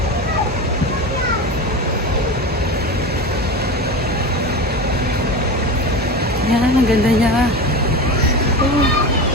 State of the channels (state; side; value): normal; both; correlation 0.26